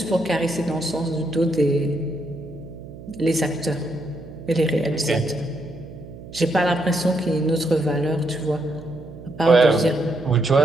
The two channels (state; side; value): noise; right; hum, 16 dB below the sound